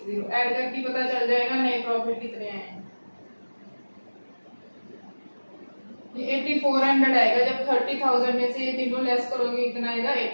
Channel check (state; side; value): inverted; both; correlation -1.00